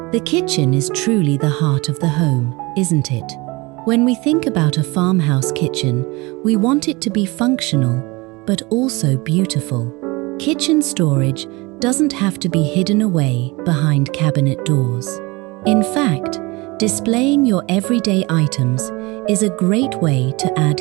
The kitchen is truly the heart of the home, isn't it? When we think about a farmhouse kitchen, we want it to be functional, but also beautiful. Kitchen storage doesn't have to be hidden away behind cabinet doors. In fact, displaying your everyday items is a great way to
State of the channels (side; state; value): left; quieter; 24.4 dB